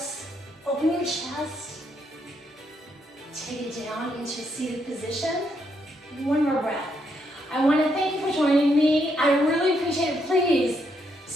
open your chest, take it down into a seated position. One more breath. I want to thank you for joining me. I really appreciate it. Please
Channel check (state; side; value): normal; both; correlation 0.77